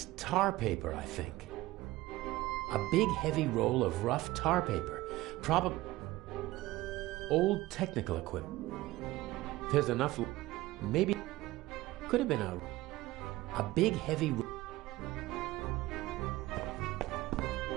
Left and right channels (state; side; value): quieter; left; 18.0 dB